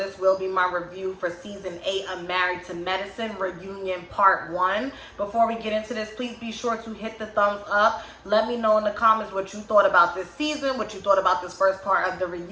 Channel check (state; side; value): identical; both; correlation 1.00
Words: will be my review for season 8 of Married to Medicine Reunion Part 1. Before we get into this, please be sure to hit the thumbs up. Let me know in the comments what you thought about this season, what you thought about this first part of the